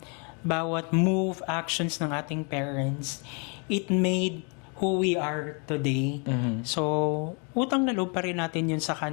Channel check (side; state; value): right; quieter; 35.7 dB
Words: move, actions ng ating parents, it made who we are today. So, utang na loob pa rin natin yun sa